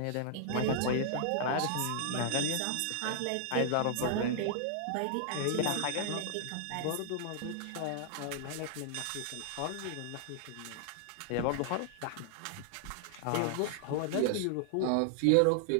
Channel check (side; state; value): both; different; correlation -0.01